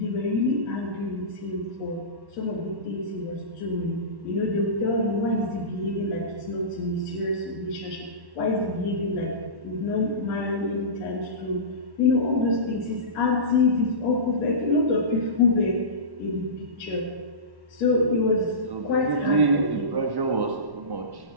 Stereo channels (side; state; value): left; late; 1.1 ms